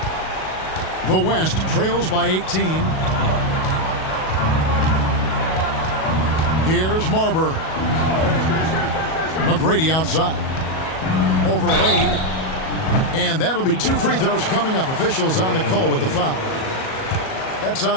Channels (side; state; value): right; late; 37 ms